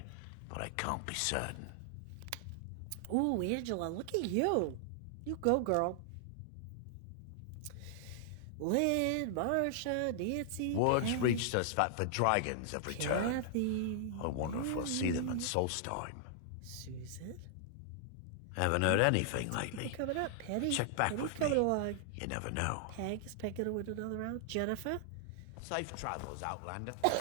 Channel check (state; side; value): different; both; correlation -0.01